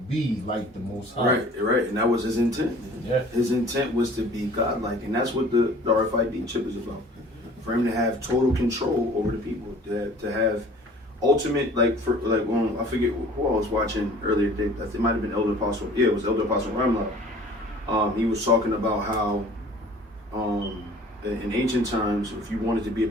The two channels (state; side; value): normal; both; correlation 0.49